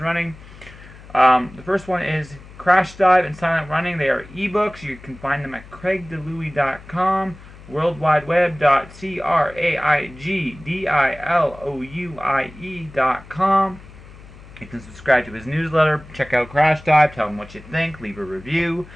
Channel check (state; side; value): noise; left; hum, 19 dB below the sound